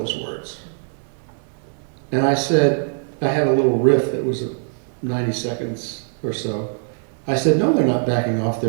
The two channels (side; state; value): left; silent; 59 dB below the other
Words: words? And I said, I had a little riff that was 90 seconds or so. I said, no, they're not backing off